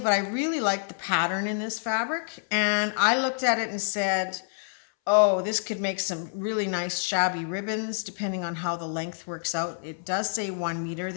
I really like the pattern in this fabric. And I looked at it and said, oh, this could make some really nice shabby ribbons depending on how the length works out. It does say 1 meter.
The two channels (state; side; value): silent; right; 60 dB below the other